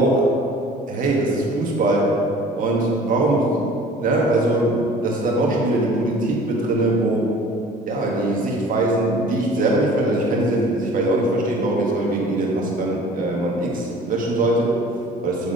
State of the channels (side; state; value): both; normal; correlation 0.47